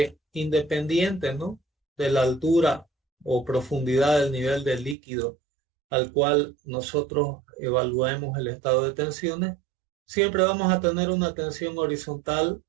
independiente, ¿no?, de la altura o profundidad del nivel del líquido al cual nosotros evaluemos el estado de tensiones, siempre vamos a tener una tensión horizontal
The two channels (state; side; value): drops out; left; at 5.0 s